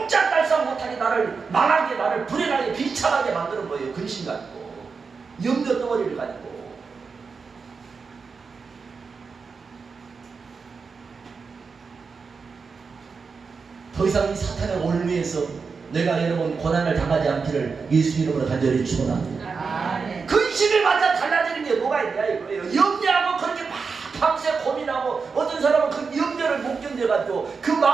못하게 나를 망하게 나를 불행하게 비참하게 만드는 거예요. 근심 가지고 염려 덩어리를 가지고. 더 이상 이 사탄의 올무에서 내가 여러분 고난을 당하지 않기를 예수 이름으로 간절히 축원합니다. 근심을 맞아 달라지는 게 뭐가 있냐 이거예요. 염려하고 그렇게 막 밤새 고민하고 어떤 사람은 그 염려를 못 견뎌가지고 그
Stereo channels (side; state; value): left; quieter; 5.1 dB